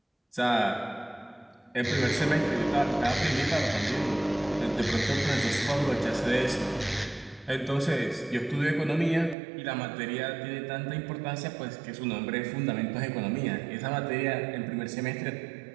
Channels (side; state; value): left; drops out; at 9.3 s